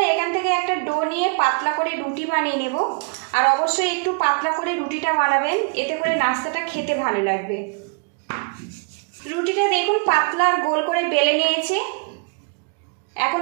এখান থেকে একটা ডো নিয়ে পাতলা করে রুটি বানিয়ে নেব। আর অবশ্যই একটু পাতলা করে রুটিটা বানাবেন, এতে করে নাস্তাটা খেতে ভালো লাগবে। রুটিটা দেখুন পাতলা আর গোল করে বেলে নিয়েছি। এখন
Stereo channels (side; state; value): left; quieter; 36.4 dB